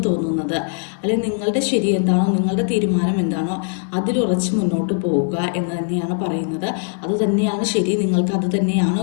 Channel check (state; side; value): silent; right; 66 dB below the other